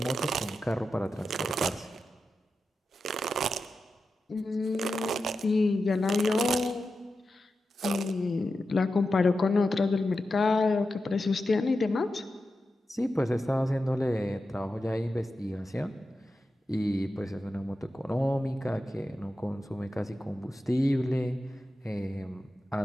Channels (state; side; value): normal; both; correlation 0.91